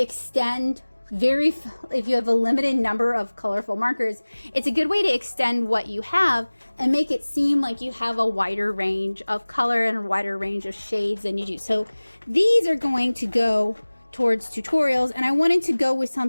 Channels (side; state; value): both; inverted; correlation -1.00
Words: if you have a limited number of colorful markers, it's a good way to extend what you have and make it seem like you have a wider range of color and a wider range of shades than you do. So these are going to go towards tutorials, and I wanted to go with